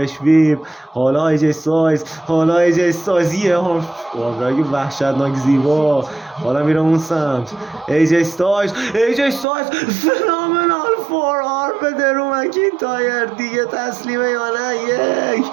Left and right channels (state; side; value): drops out; left; at 9.5 s